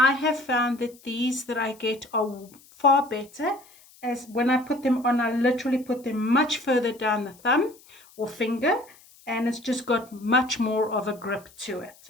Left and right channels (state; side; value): noise; left; hiss, 26 dB below the sound